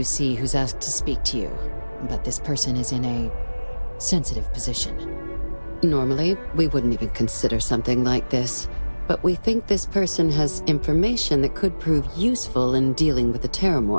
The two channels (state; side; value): inverted; both; correlation -1.00